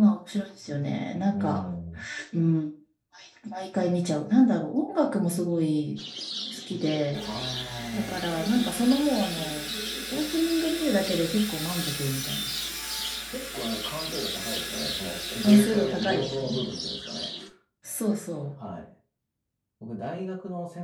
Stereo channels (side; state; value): both; identical; correlation 1.00